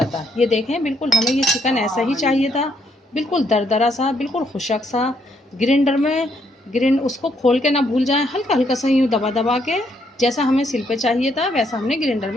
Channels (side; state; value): both; normal; correlation 0.73